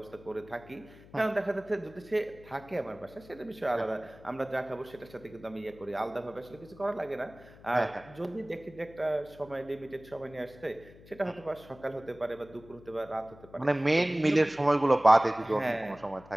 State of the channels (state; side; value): noise; left; hum, 21 dB below the sound